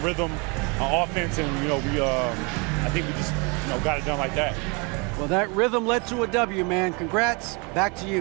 on offense, and I think we just got it done like that. Well, that rhythm led to a W, man. Congrats. Back to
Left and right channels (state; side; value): quieter; left; 31.2 dB